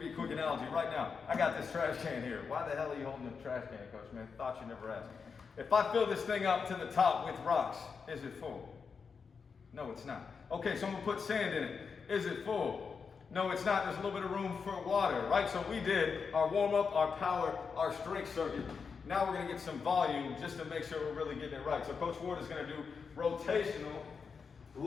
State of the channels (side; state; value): right; quieter; 5.6 dB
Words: you a quick analogy right now. I got this trash can here. Why the hell are you holding the trash can, coach, man? Thought you never asked. If I fill this thing up to the top with rocks, is it full? No, it's not. Okay, so I'm gonna put sand in it. Is it full? No, it's not. There's a little bit of room for water, right? So we did our warm-up, our power, our strength circuit. Now we're going to get some volume just to make sure we're really getting it right. So Coach Ward is going to do rotational